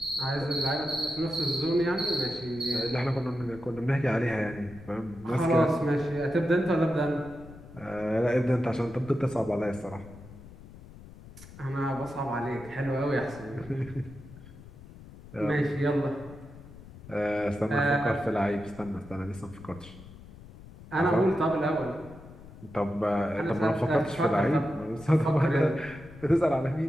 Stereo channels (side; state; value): left; noise; rumble, 18 dB below the sound